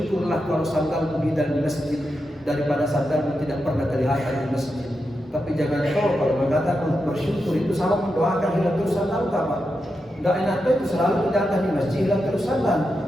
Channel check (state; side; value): normal; both; correlation 0.87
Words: kalau sandalmu di dalam masjid daripada sandalmu tidak pernah kelihatan di masjid. Tapi jangan tahu kalau mengatakan bersyukur itu sama mendoakan hilang terus sandal kapan? Tidak enak itu selalu datang di masjid hilang terus sandal.